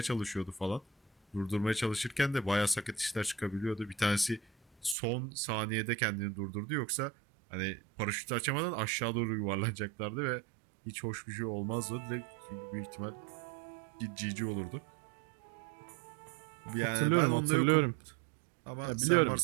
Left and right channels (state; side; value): drops out; left; at 5.0 s